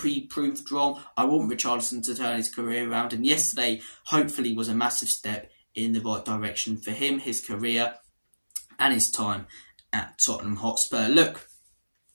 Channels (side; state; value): both; inverted; correlation -1.00